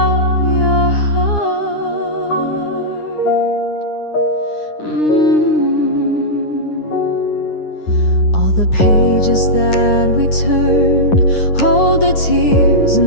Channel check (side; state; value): right; late; 9.8 ms